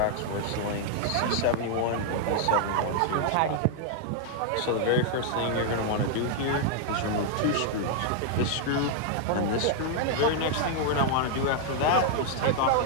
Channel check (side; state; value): both; different; correlation -0.01